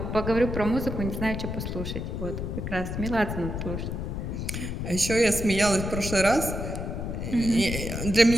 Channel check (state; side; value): noise; left; rumble, 4 dB below the sound